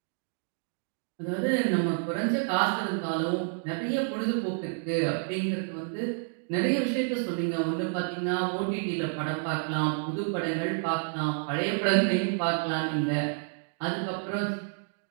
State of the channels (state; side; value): silent; left; digital silence